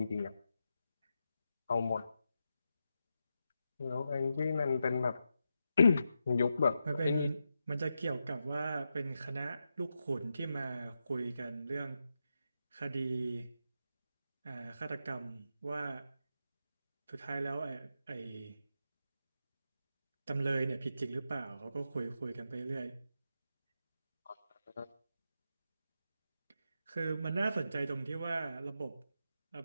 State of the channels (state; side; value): inverted; both; correlation -0.87